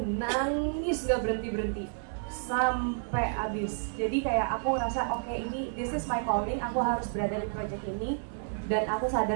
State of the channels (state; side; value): silent; left; 58 dB below the other